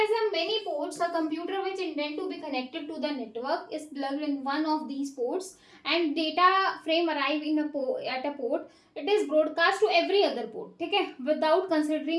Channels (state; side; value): identical; both; correlation 1.00